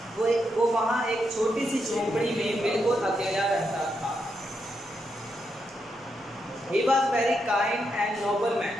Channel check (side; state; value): both; normal; correlation 0.82